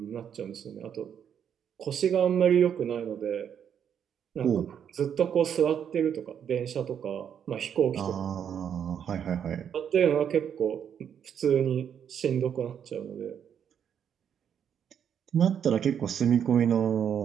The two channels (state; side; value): quieter; left; 8.5 dB